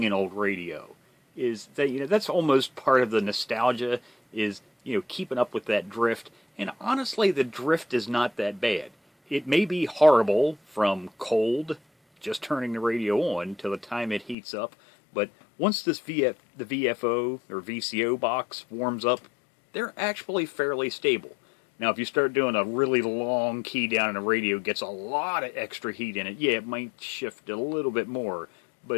an old radio, is that, that's almost part of the nostalgia, is, keeping up with that drift. And honestly, the drift is not that bad. It may be horrible from cold, just turning the radio on, till the time it heats up, but once the VFO or VCO box warms up, they're actually fairly stable. Now, if you start doing a really long key down in a radio, it gets a lot of extra heat in it. Yeah, it might shift a little bit more,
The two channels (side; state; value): right; drops out; at 14.4 s